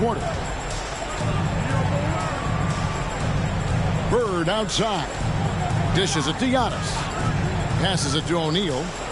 Bird outside. Dishes it to Giannis. Passes it to O'Neal.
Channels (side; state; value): both; identical; correlation 1.00